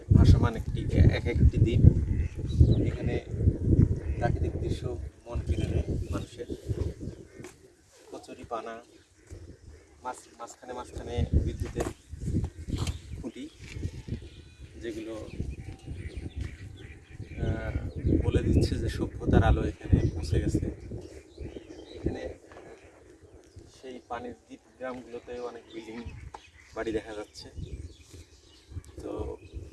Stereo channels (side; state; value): both; identical; correlation 1.00